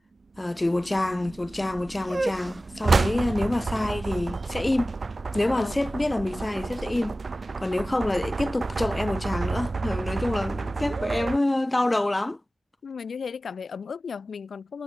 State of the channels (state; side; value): normal; both; correlation 0.96